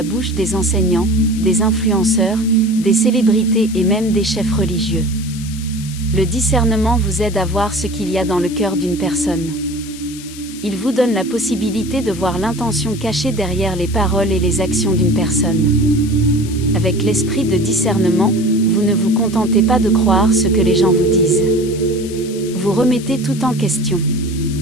bouche des enseignants, des influenceurs, des célébrités et même des chefs religieux. Le discernement vous aide à voir ce qu'il y a dans le cœur d'une personne. Il vous donne la possibilité de voir l'intention cachée derrière les paroles et les actions d'une personne. Avec l'esprit de discernement, vous ne vous contentez pas de croire ce que les gens vous disent. Vous remettez tout en question.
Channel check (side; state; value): left; noise; hiss, 15 dB below the sound